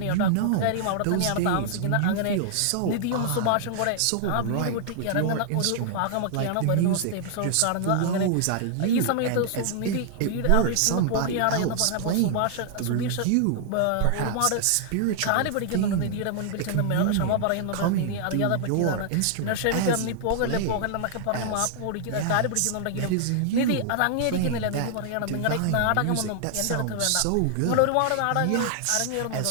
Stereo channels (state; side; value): different; both; correlation -0.01